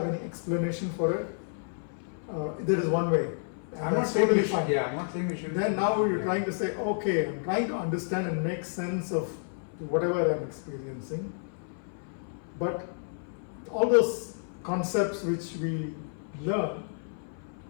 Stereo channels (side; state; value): right; silent; 58 dB below the other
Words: any explanation for it. There is one way. I'm not saying we should. Yeah, I'm not saying we should. Then now you're trying to say, okay, I'm trying to understand and make sense of whatever I'm experiencing. But all those concepts which we learn